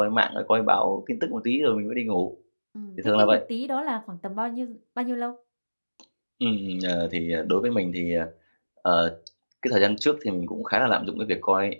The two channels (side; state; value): both; inverted; correlation -1.00